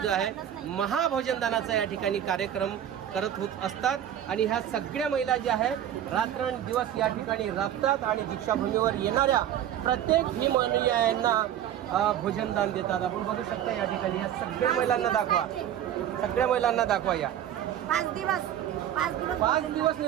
जो आहे महाभोजनदानाचा या ठिकाणी कार्यक्रम करत होत असतात. आणि ह्या सगळ्या महिला ज्या आहेत रात्रंदिवस या ठिकाणी राबतात आणि दीक्षाभूमीवर येणाऱ्या प्रत्येक भीम अनुयायांना भोजनदान देतात. आपण बघू शकता या ठिकाणी या सगळ्या महिलांना दाखवा, सगळ्या महिलांना दाखवा. या 5 दिवस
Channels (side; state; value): left; quieter; 10.7 dB